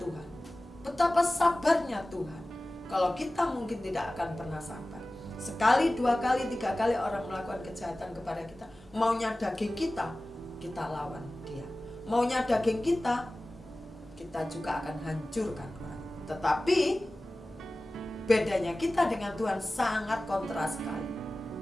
betapa sabarnya Tuhan. Kalau kita mungkin tidak akan pernah sabar. Sekali, dua kali, tiga kali orang melakukan kejahatan kepada kita, maunya daging kita, kita lawan dia. Maunya daging kita, kita juga akan hancurkan orang. Tetapi bedanya kita dengan Tuhan sangat kontras sekali.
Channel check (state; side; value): normal; both; correlation 0.97